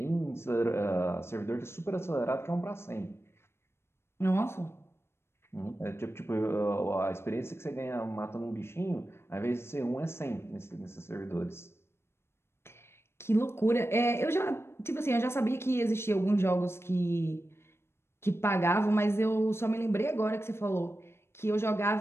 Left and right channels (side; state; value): right; late; 0.12 ms